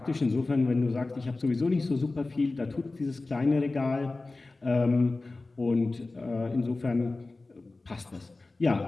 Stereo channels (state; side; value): quieter; right; 3.3 dB